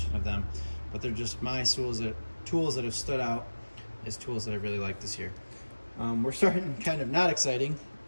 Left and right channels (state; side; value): inverted; both; correlation -1.00